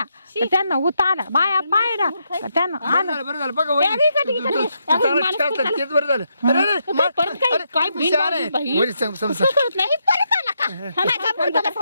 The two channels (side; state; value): both; inverted; correlation -0.80